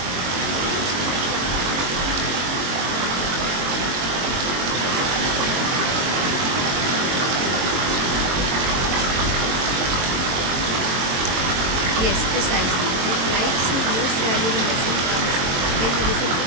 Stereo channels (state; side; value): late; left; 22 ms